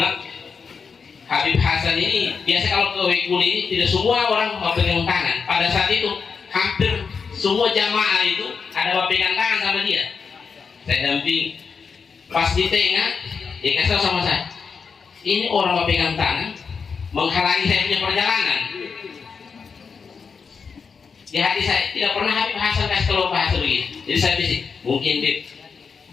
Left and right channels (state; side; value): quieter; right; 5.6 dB